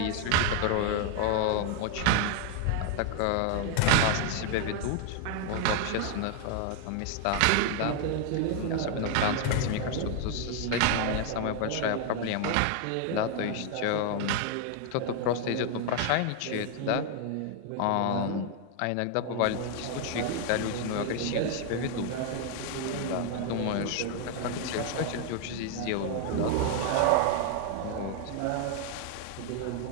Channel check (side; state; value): both; different; correlation 0.00